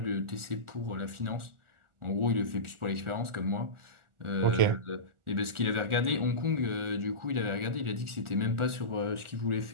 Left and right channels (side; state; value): left; late; 1.4 ms